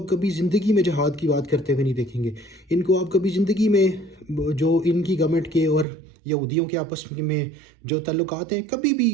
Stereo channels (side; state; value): left; drops out; at 5.9 s